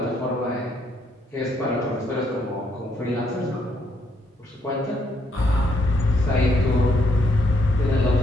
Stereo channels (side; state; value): both; normal; correlation 0.72